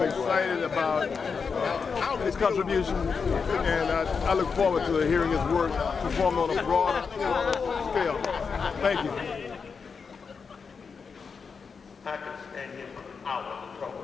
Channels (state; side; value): quieter; right; 5.5 dB